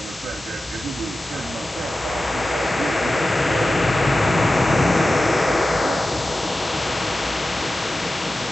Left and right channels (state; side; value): normal; both; correlation 0.94